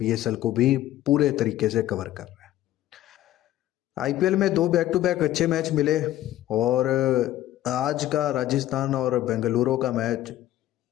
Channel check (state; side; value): quieter; right; 14.0 dB